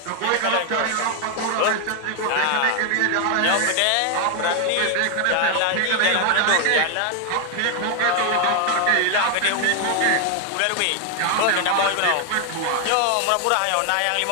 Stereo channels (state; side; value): different; both; correlation 0.01